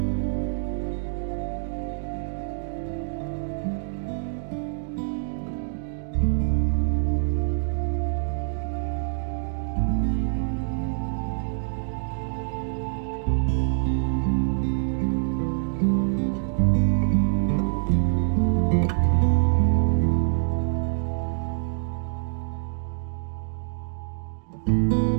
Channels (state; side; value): silent; left; digital silence